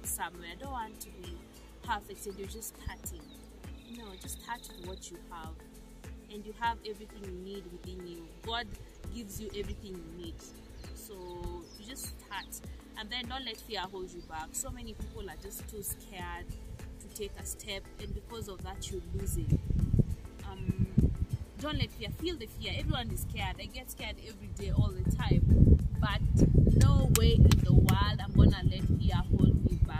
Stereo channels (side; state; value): both; identical; correlation 1.00